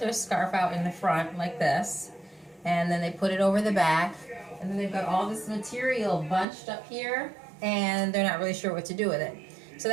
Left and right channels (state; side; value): drops out; left; at 6.5 s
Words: scarf out in the front like this, and then they put it over the back, and then they've got all this material bunched up here, and they're not really sure what to do with it. So